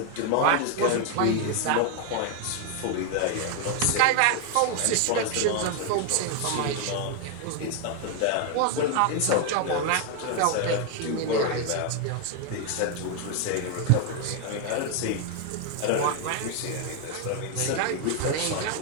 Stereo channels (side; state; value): both; different; correlation 0.01